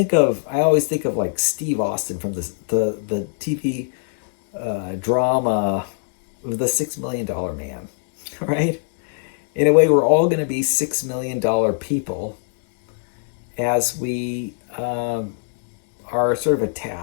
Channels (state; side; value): silent; right; digital silence